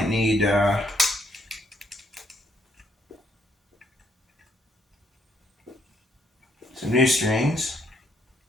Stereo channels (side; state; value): both; normal; correlation 0.71